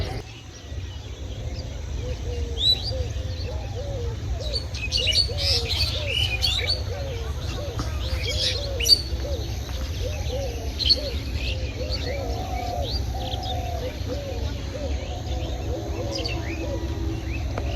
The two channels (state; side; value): identical; both; correlation 1.00